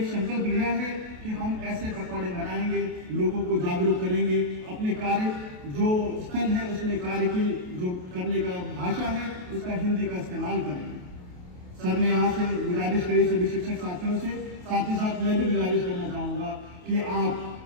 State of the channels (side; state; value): left; late; 28 ms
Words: संकल्प लिया है कि हम ऐसे पकवाड़े बनाएंगे, लोगों को जागरूक करेंगे, अपने कार्य जो स्थल है उसमें कार्य की जो करने का भाषा है उसका हिंदी का इस्तेमाल करेंगे। सर ने यहाँ से गुजारिश करी सभी शिक्षक साथियों से, साथ ही साथ मैं भी गुजारिश करना चाहूँगा कि